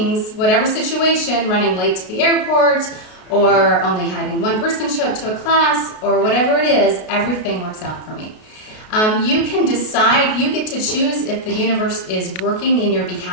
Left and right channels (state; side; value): late; right; 33 ms